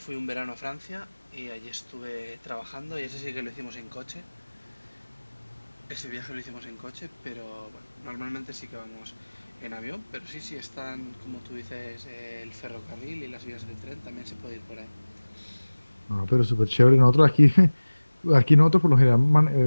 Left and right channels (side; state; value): both; inverted; correlation -1.00